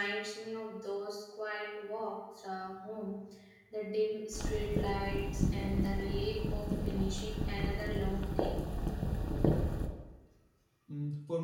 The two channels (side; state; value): both; identical; correlation 1.00